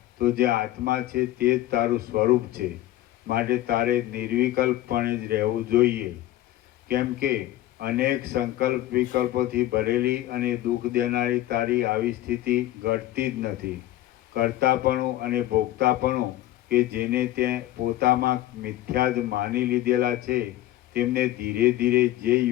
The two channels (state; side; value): quieter; right; 14.8 dB